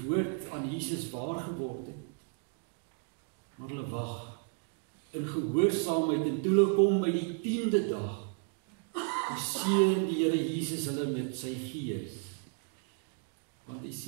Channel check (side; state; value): left; quieter; 39.1 dB